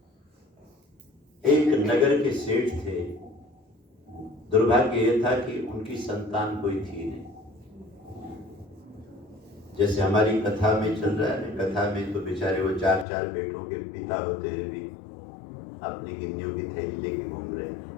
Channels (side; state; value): right; drops out; at 13.1 s